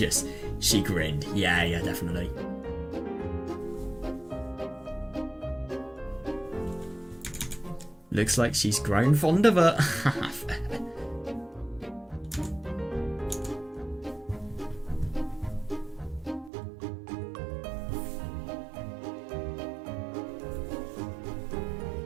She grinned. Yeah, definitely. Looks like she's grown fond of her.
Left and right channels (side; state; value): left; drops out; at 16.5 s